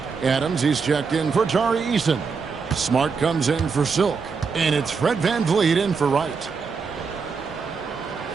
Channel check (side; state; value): left; quieter; 5.3 dB